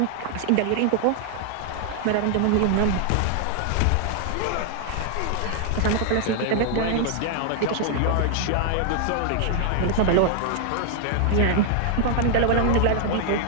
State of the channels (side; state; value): both; different; correlation 0.00